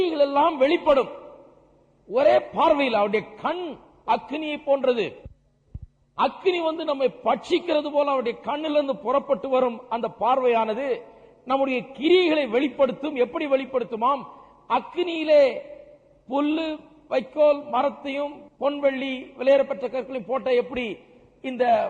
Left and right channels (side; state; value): both; identical; correlation 1.00